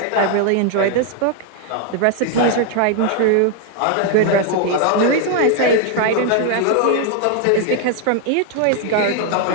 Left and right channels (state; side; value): different; both; correlation 0.01